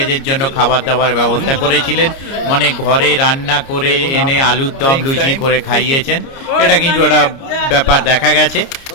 জন্য খাবার দাবার ব্যবস্থা করেছিলেন, মানে ঘরে রান্না করে এনে আলুর দম লুচি করে খাইয়েছেন। এটা কিন্তু একটা ব্যাপার দেখা গেছে।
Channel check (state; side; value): late; right; 30 ms